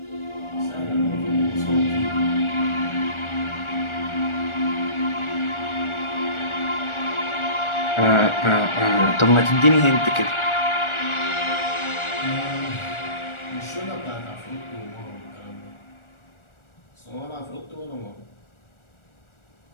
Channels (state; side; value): late; right; 1.4 ms